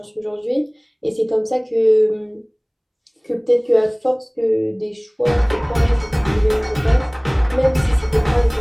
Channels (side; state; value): both; identical; correlation 1.00